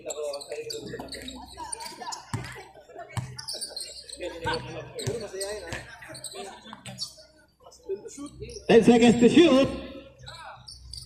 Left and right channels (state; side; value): identical; both; correlation 1.00